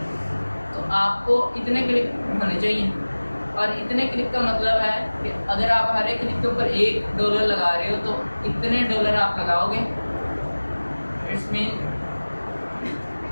तो आपको इतने क्लिक होने चाहिए। और इतने क्लिक का मतलब है कि अगर आप हर एक क्लिक के ऊपर $1 लगा रहे हो तो इतने डॉलर आप लगाओगे, इट्स मीन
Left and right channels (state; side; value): inverted; both; correlation -1.00